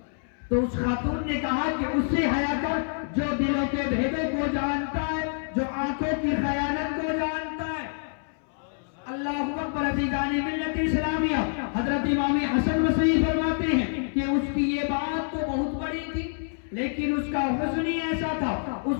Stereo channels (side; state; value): right; silent; 60 dB below the other